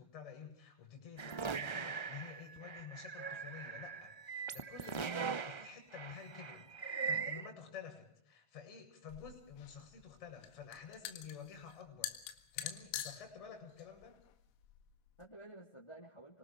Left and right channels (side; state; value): right; late; 1.3 ms